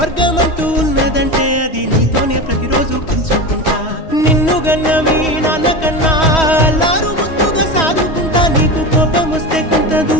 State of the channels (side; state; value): right; late; 3.1 ms